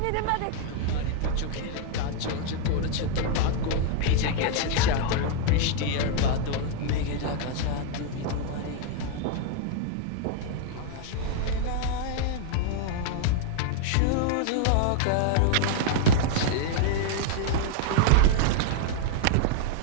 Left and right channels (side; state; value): both; different; correlation -0.01